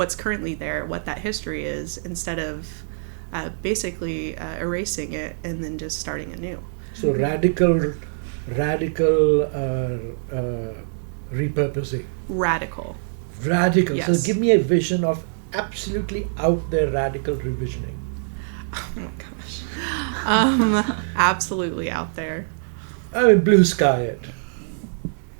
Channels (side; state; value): left; silent; 63 dB below the other